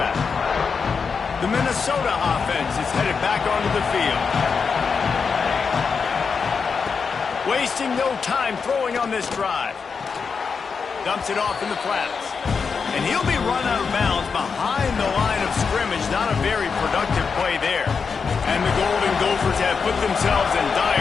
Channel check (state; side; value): quieter; right; 5.5 dB